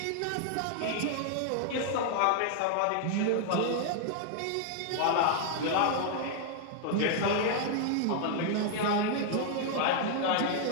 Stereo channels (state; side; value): different; both; correlation 0.00